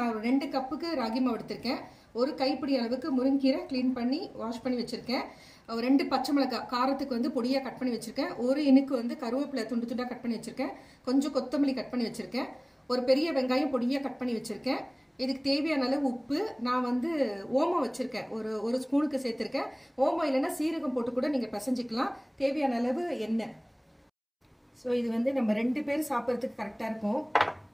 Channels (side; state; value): both; identical; correlation 1.00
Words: 2 கப்புக்கு ராகி மாவு எடுத்திருக்கேன். ஒரு கைப்பிடி அளவுக்கு முருங்கீரை க்ளீன் பண்ணி வாஷ் பண்ணி வச்சிருக்கேன். 2 பச்சை மிளகாய் காரத்துக்கு வந்து பொடியாக கட் பண்ணி வச்சிருக்கேன். ஒரு இனுக்கு வந்து கருவேப்பிலை துண்டு துண்டாக கட் பண்ணி வச்சிருக்கேன். கொஞ்சம் கொத்தமல்லி கட் பண்ணி வச்சிருக்கேன். ஒரு பெரிய வெங்காயம் பொடியாக கட் பண்ணி வச்சிருக்கேன். இதுக்கு தேவையான அளவு உப்பு, நான் வந்து ஓமம் வச்சிருக்கேன், ஒரு ஸ்பூனுக்கு சேர்த்திருக்கேன். ஓமம் இல்லைன்னா சீரகம் போட்டு கூட நீங்க பிசைஞ்சிக்கலாம். தேவையான அளவு எண்ணெய். ஸோ இது வந்து நம்ம 2 பேர் சாப்பிட்றதுக்கு கரெக்டாக இருக்கும்.